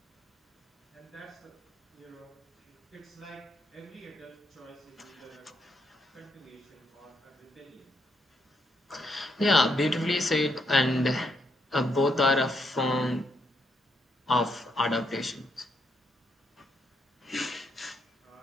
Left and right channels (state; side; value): normal; both; correlation 0.77